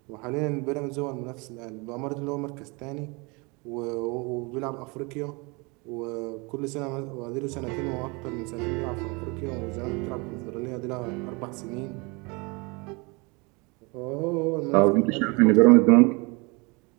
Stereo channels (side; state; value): left; quieter; 28.5 dB